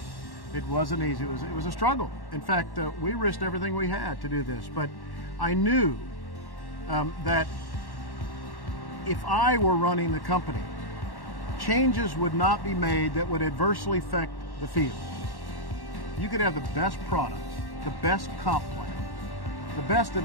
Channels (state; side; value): late; right; 1.1 ms